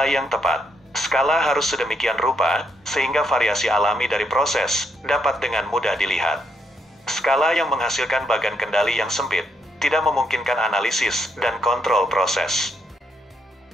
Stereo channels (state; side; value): normal; both; correlation 0.76